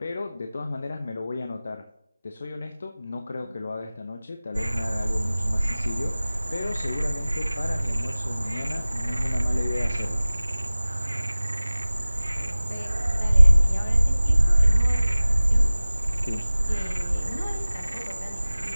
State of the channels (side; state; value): both; inverted; correlation -0.98